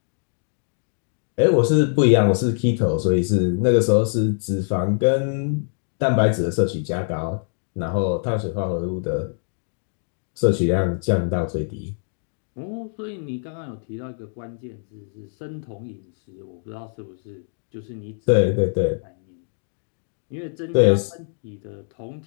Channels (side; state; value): right; silent; digital silence